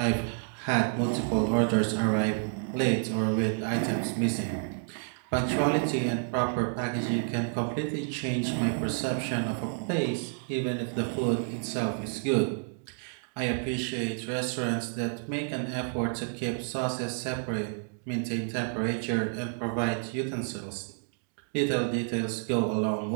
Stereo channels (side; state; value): left; silent; 57 dB below the other